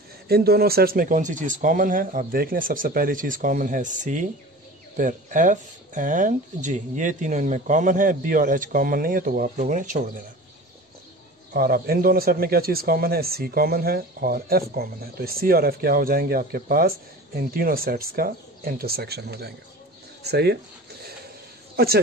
इन दोनों सेट्स में कौन सी चीज़ कॉमन है, आप देख लें। सबसे पहली चीज़ कॉमन है C, फिर F एंड G, ये तीनों इनमें कॉमन है। B और H कॉमन नहीं है तो वो आप लोगों ने छोड़ देना। और अब इन दोनों सेट में क्या चीज़ कॉमन है, C कॉमन है और F कॉमन है। तो C और F क्या हो जाएंगे आपके पास, इन तीनों सेट्स का इंटरसेक्शन हो जाएंगे। सही है, अच्छा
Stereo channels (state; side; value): normal; both; correlation 0.38